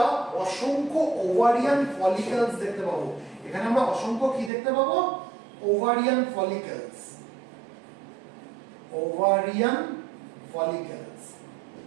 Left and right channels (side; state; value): left; drops out; at 4.5 s